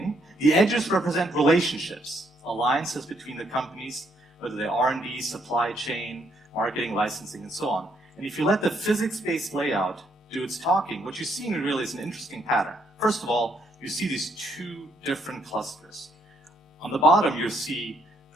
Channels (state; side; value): normal; both; correlation 0.72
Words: the edges represent relationships, alliances between the companies, whether they're R&D, supply chain, marketing, licensing, and so on. And if you let the physics-based layout do its talking, what you're seeing really is an interesting pattern. First of all, you see these two different clusters. On the bottom, you see